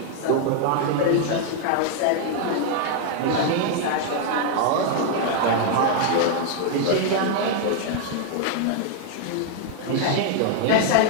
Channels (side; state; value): both; different; correlation 0.00